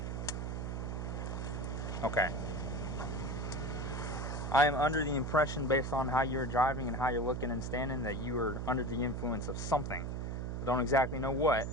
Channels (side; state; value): right; noise; hum, 3 dB below the sound